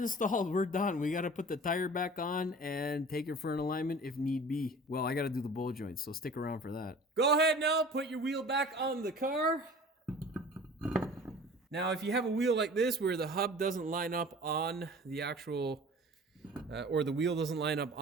We're done. We got to put the tire back on and take it for an alignment if need be. Well, I got to do the bowl joint, so stick around for that. Go ahead now. Put your wheel back on the car. Now, if you have a wheel like this where the hub doesn't line up on the actual... or the wheel doesn't line up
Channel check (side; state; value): both; normal; correlation 0.43